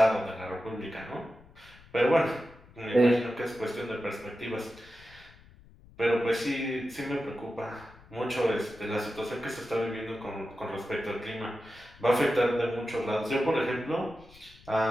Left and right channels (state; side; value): noise; left; rumble, 24 dB below the sound